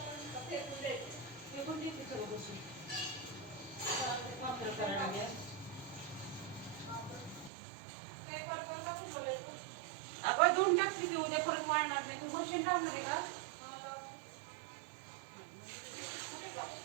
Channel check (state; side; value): drops out; left; at 7.5 s